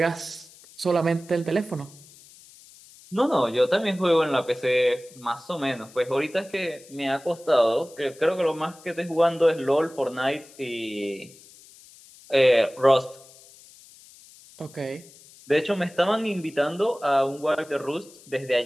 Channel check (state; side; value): noise; left; hiss, 23 dB below the sound